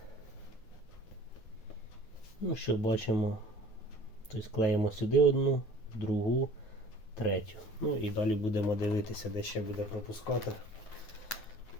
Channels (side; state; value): right; late; 9.3 ms